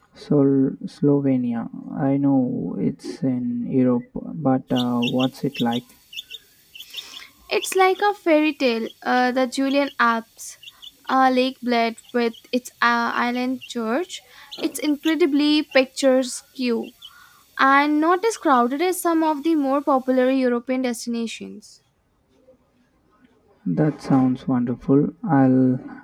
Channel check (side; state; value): both; identical; correlation 1.00